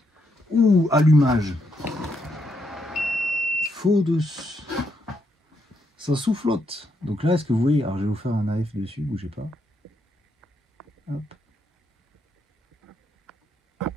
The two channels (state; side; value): normal; both; correlation 0.78